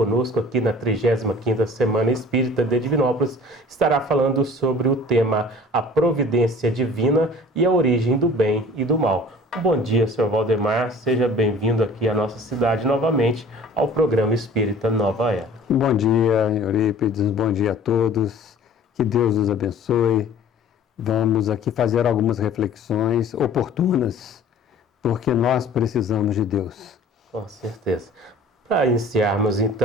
aqui na 35ª Semana Espírita de Divinópolis, estará falando sobre o tema A Providência Divina e a Origem do Bem e do Mal. Bom dia, senhor Valdemar, seja bem-vindo aqui à nossa cidade novamente ao programa Espírita Nova Era. Bom dia, Eurípides, bom dia a todos, que Deus nos abençoe. Vamos aqui fazer algumas reflexões oportunas, porque nós precisamos de Deus. Com certeza. Para iniciarmos,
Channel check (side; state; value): both; normal; correlation 0.47